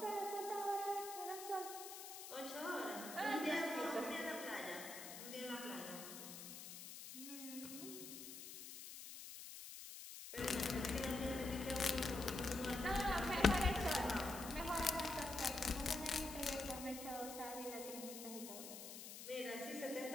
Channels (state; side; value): noise; left; hiss, 10 dB below the sound